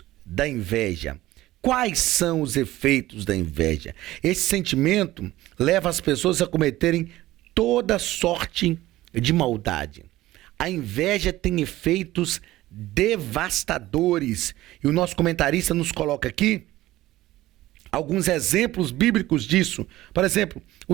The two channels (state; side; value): quieter; left; 16.4 dB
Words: da inveja. Quais são os efeitos da inveja? Esse sentimento leva as pessoas a cometerem toda sorte de maldade. A inveja tem efeitos devastadores. E o nosso comentarista nos coloca aqui alguns exemplos bíblicos disso. Por exemplo,